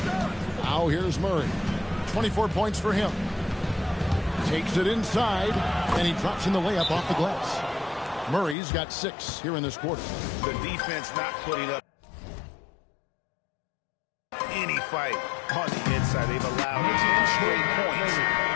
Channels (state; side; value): drops out; right; at 8.6 s